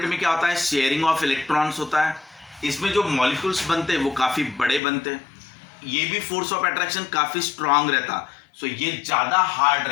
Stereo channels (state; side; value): drops out; right; at 4.8 s